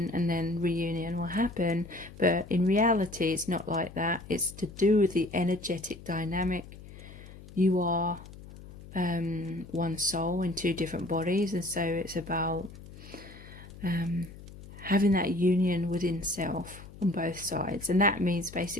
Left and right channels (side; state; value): left; noise; hum, 17 dB below the sound